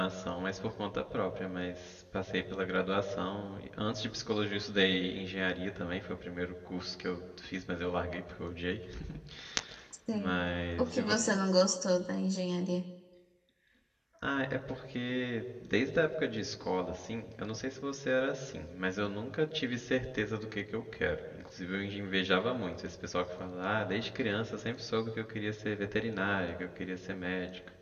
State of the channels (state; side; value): identical; both; correlation 1.00